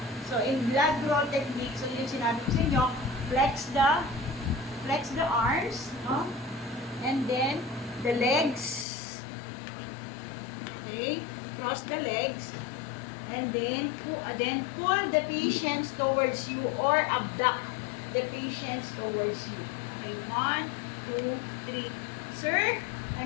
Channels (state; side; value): drops out; right; at 8.8 s